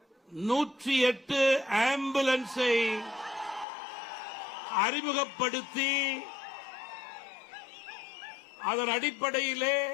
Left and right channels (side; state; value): right; drops out; at 3.7 s